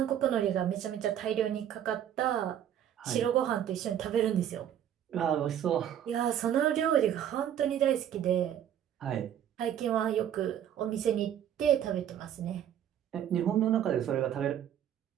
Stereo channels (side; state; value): left; quieter; 10.1 dB